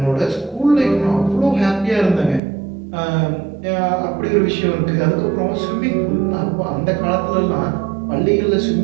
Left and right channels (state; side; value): drops out; left; at 2.4 s